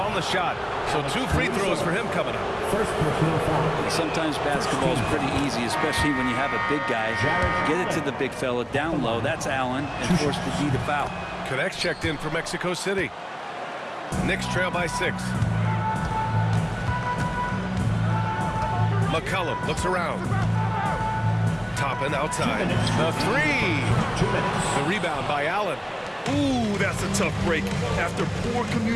the shot. So 2 free throws for him coming up. Sometimes basketball is pretty easy, especially when you have a big guy. Get it to the big fella down low. That's Allen, and force the D to foul. Connects checked in for Mexico City. Knicks trail by 6. McCollum looks around. Toppin outside. The 3. The rebound by Allen. Ooh, that's a tough break. After poor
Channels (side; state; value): both; identical; correlation 1.00